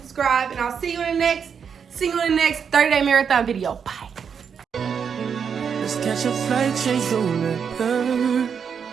And I'll see you in the next 30-day marathon video. Bye. Let's catch a flight, change the weather,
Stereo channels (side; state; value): left; quieter; 6.9 dB